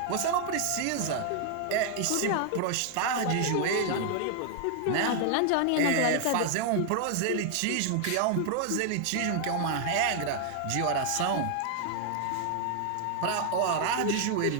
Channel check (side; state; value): both; different; correlation 0.00